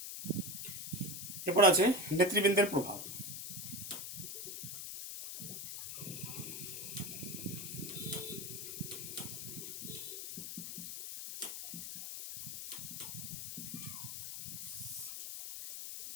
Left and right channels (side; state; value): left; noise; hiss, 6 dB below the sound